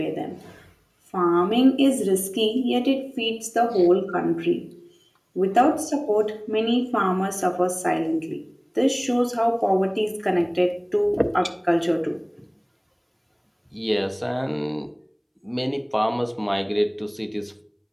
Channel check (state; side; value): identical; both; correlation 1.00